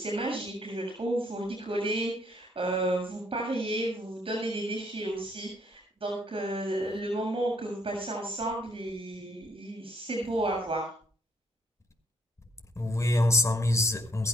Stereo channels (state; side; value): normal; both; correlation 0.69